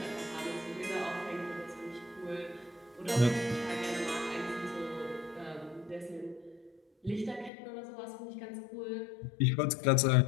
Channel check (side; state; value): right; drops out; at 7.5 s